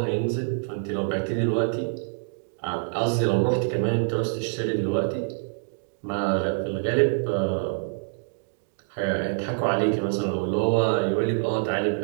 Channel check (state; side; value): silent; left; digital silence